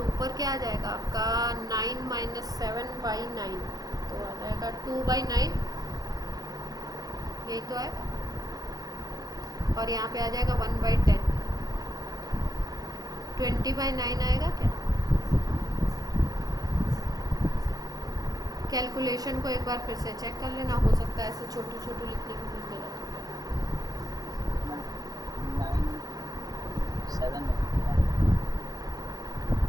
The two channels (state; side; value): late; left; 0.18 ms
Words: ऊपर क्या आ जाएगा आपका 9 - 7/9, तो आ जाएगा 2/9, यही तो आएगा। और यहाँ पे आ जाएगा 1/10, 20/9 आएगा क्या। कैलकुलेशन को एक बार फिर से चेक कर लेना, हो सकता है ऐसे छोटू लिखने की कुछ गलत हो जाए। 9 7